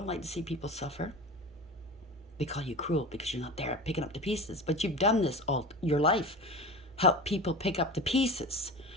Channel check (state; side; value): normal; both; correlation 0.31